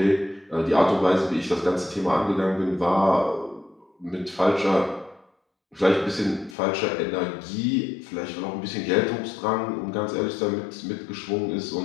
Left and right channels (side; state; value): right; drops out; at 6.6 s